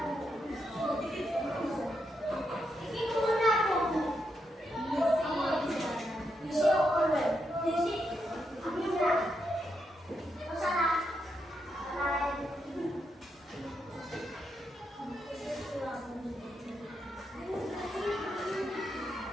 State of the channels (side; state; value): both; normal; correlation 0.82